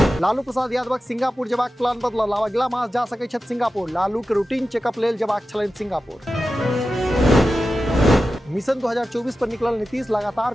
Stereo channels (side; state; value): both; normal; correlation 0.93